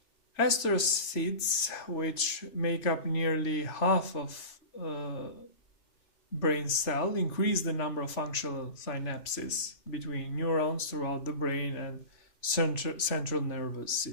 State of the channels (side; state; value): right; late; 3.0 ms